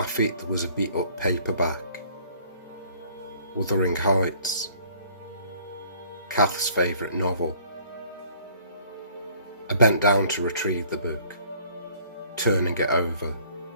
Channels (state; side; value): inverted; both; correlation -0.57